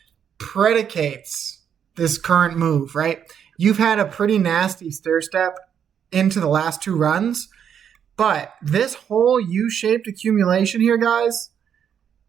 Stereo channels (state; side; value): quieter; left; 8.4 dB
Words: predicates this current move, right? You've had a pretty nasty stair step into the last 2 runs, but this whole U-shaped accumulation here, guys,